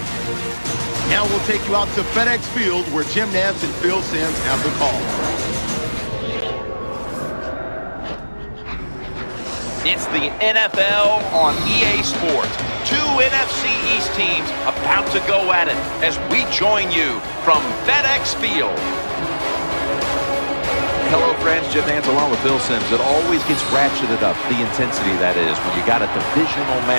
Now we'll take you out to FedEx Field, where Jim Nantz and Phil Simms have the call. It's the NFL on EA Sports. Two NFC East teams about to go at it as we join you from FedEx Field. Hello, friends. Jim Nantz along with Phil Simms. It always gets ratcheted up, the intensity that is, when you got a divisional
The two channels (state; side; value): inverted; both; correlation -1.00